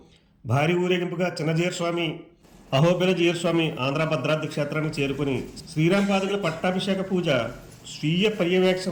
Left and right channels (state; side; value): identical; both; correlation 1.00